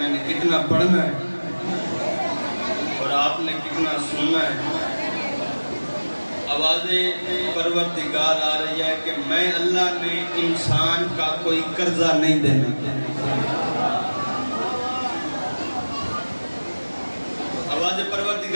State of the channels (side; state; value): both; inverted; correlation -1.00